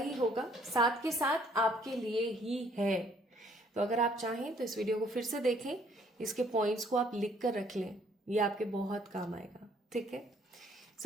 होगा, साथ के साथ आपके लिए ही है। तो अगर आप चाहें तो इस वीडियो को फिर से देखें, इसके पॉइंट्स को आप लिख कर रख लें, ये आपके बहुत काम आएगा, ठीक है।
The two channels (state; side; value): normal; both; correlation 0.63